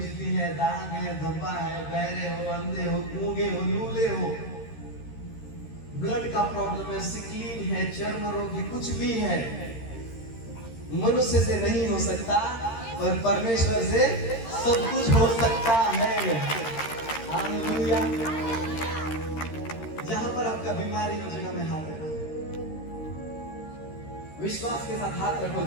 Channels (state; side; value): late; right; 13 ms